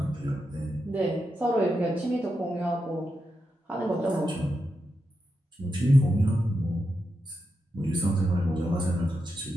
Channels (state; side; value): normal; both; correlation 0.86